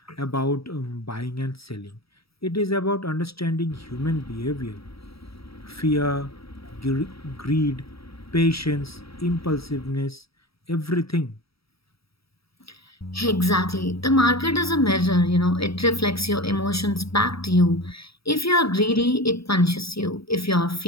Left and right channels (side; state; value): right; late; 0.76 ms